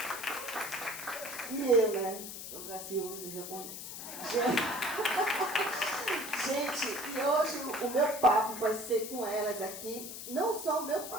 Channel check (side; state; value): left; noise; hiss, 9 dB below the sound